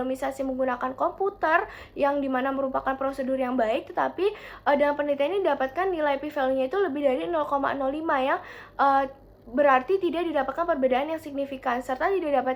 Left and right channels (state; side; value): identical; both; correlation 1.00